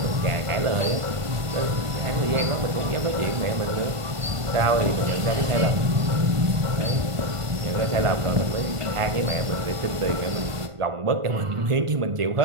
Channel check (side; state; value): left; late; 1.5 ms